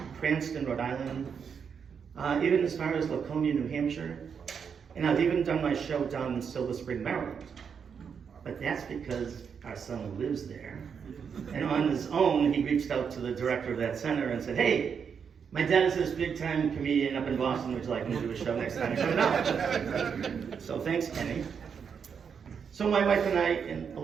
Cranston, Rhode Island, even as far as Laconia, New Hampshire. And I've even done my show down in Silver Spring, Maryland. But that's because our son lives there. And on his own, he reached out to the director of that center and said, hey, my dad is this big time comedian up in Boston, would you like me to do a show next time? I said, no. So thanks, Kenny. So my wife and I, and a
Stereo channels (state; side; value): quieter; left; 6.8 dB